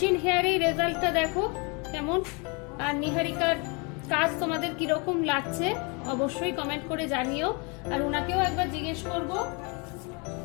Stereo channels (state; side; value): quieter; right; 32.0 dB